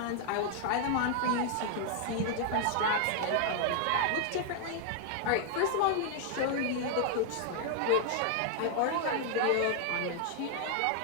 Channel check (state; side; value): different; both; correlation 0.00